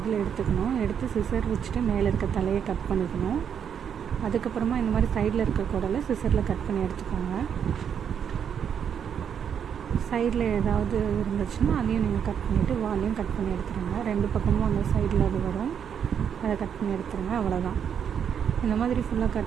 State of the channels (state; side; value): quieter; left; 8.0 dB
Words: எடுத்துக்கணும். எடுத்து சிசர் வச்சுட்டு மேலே இருக்க தலையை கட் பண்ணிக்கணும். அதுக்கப்புறமா இந்த மாதிரி சைடில் இருக்க குடலை சிசரில் கட் பண்ணி எடுத்துக்கோங்க. சைடில் ஏதாவது இருந்துச்சுன்னா அதையும் நீங்கள் கட் பண்ணிவிட்டு வாலையும் கட் பண்ணி எடுத்துருங்க. ரெண்டு பக்கமும் அந்த சைடில் அது வரும், அதை கட் பண்ணி எடுத்துருங்க. அவ்வளோதான். இந்த மாதிரி ஃபுல்லாக